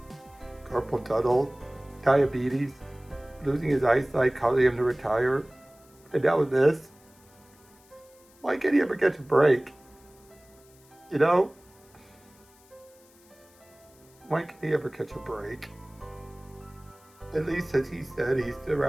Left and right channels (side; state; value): left; noise; hiss, 28 dB below the sound